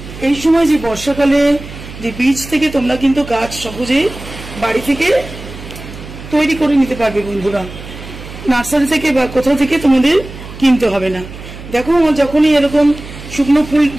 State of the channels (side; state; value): right; noise; hum, 14 dB below the sound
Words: এই সময় যে বর্ষাকালে যে বীজ থেকে তোমরা কিন্তু গাছ সহজেই বাড়ি থেকে তৈরি করে নিতে পারবে বন্ধুরা, নার্সারি থেকে বা কোথাও থেকে তোমাদের কিনতে হবে না। দেখো আমার যখনই এরকম শুকনো ফুল